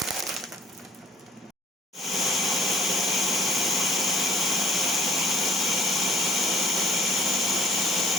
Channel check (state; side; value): normal; both; correlation 0.57